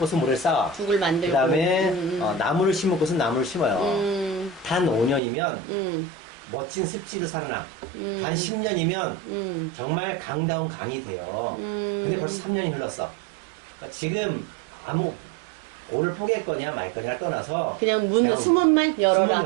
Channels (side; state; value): left; drops out; at 5.2 s